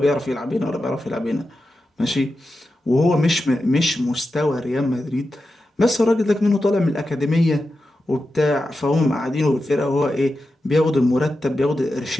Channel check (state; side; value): normal; both; correlation 0.90